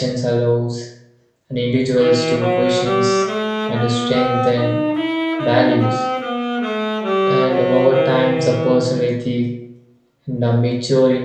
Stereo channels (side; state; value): both; identical; correlation 1.00